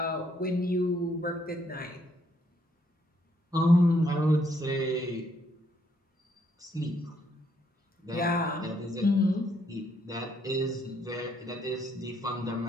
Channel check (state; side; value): normal; both; correlation 0.72